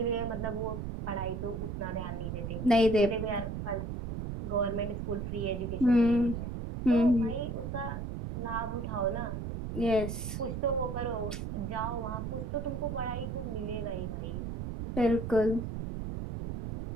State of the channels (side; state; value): right; noise; rumble, 5 dB below the sound